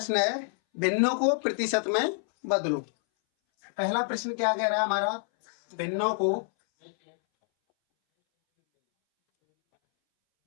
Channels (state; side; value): silent; right; 60 dB below the other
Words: है भिन्नों को प्रतिशत में बदलो। पहला प्रश्न क्या कह रहा है हमारा, भिन्नों को